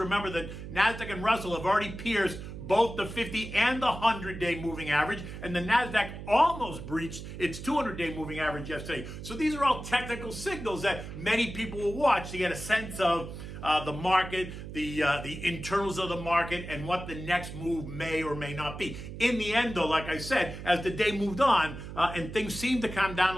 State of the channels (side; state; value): right; noise; hum, 10 dB below the sound